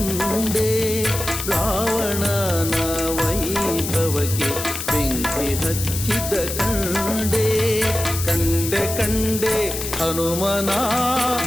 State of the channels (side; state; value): left; noise; hiss, 6 dB below the sound